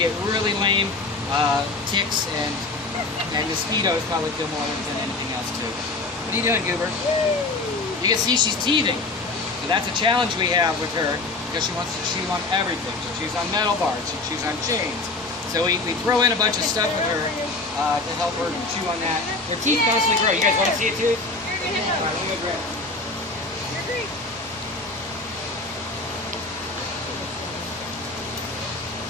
really lame, ticks and mosquitoes probably kill more than anything else too. What are you doing, Goober? You can see she's teething. So that's a challenge we have with her because she wants to chew on everything. She chews on metal bars, she chews on chains. So we throw in a bunch of stuff with her to help her chew on that. Her teeth constantly grow. You guys want to see it too? All right, let me grab it. You're great.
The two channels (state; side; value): quieter; right; 3.3 dB